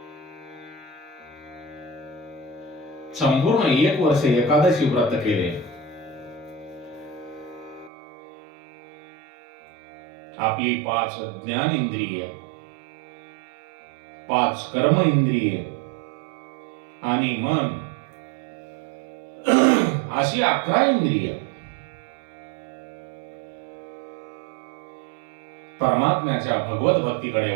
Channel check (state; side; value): drops out; left; at 7.9 s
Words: संपूर्ण 1 वर्ष एकादशी व्रत केले. आपली 5 ज्ञान इंद्रिय, 5 कर्म इंद्रिय आणि मन अशी 11 इंद्रिय परमात्म्याच्या भगवत भक्तीकडे